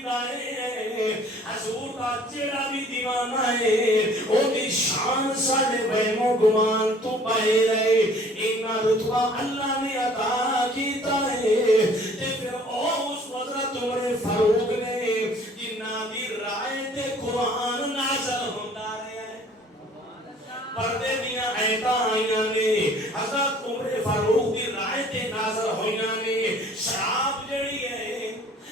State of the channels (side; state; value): both; normal; correlation 0.53